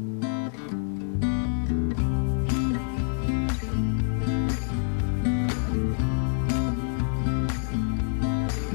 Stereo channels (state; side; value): silent; right; digital silence